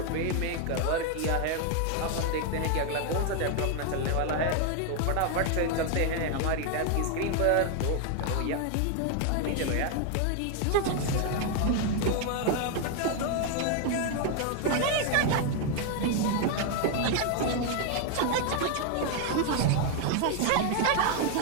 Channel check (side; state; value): both; different; correlation 0.01